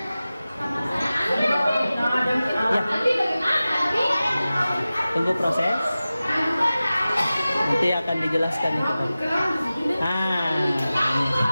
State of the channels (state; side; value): inverted; both; correlation -0.96